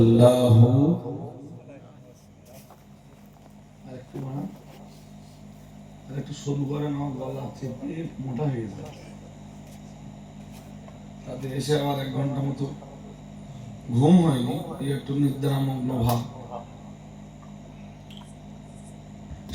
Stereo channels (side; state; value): both; identical; correlation 1.00